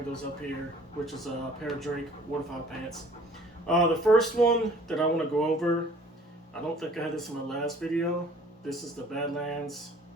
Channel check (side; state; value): both; normal; correlation 0.53